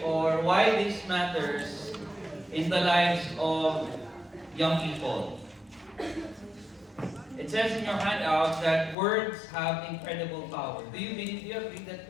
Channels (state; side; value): drops out; right; at 9.0 s